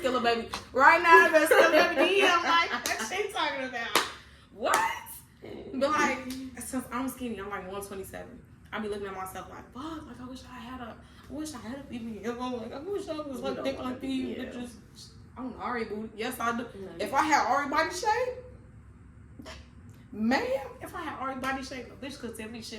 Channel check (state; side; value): identical; both; correlation 1.00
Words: baby. Right now, I've been Skilla baby. I'm like, what she talking about? What? But like, since I'm skinny, I'm like 127. I be looking at myself like, fuck, like I wish I had a BBL. Like I wish I was like thick like these bitches. I'm Ari booty. Yes, I do. If I had Ari body shape, man, if I had Ari body shape, a bitch could tell me